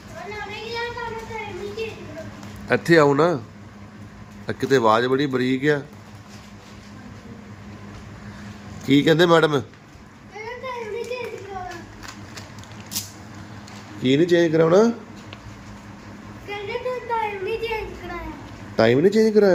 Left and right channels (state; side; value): identical; both; correlation 1.00